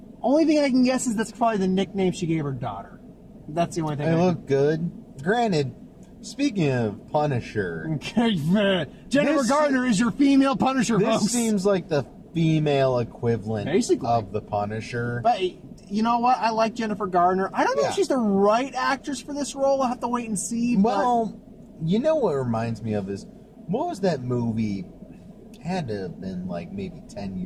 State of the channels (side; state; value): both; identical; correlation 1.00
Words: Only thing I can guess is that's probably the nickname she gave her daughter. That's the only thing. It looked good. Granted, speaking of Punisher, Jennifer Gardner is your female Punisher, this folks. seems like the female equivalent Basically. of the Punisher. But you know what? I like Jennifer Gardner. I don't know Yeah. if she's the right actress for this role. I'll have to wait and see. Well, you know what reminds me of is, what was that movie? It had to have been like maybe 10